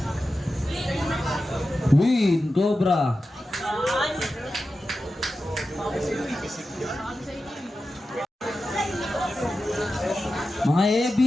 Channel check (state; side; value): normal; both; correlation 0.92